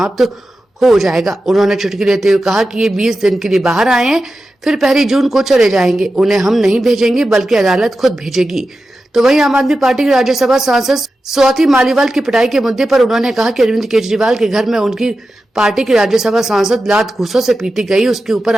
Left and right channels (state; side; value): normal; both; correlation 0.92